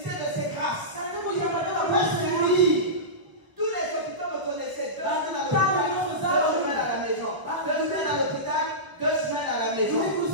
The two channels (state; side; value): late; left; 1.2 ms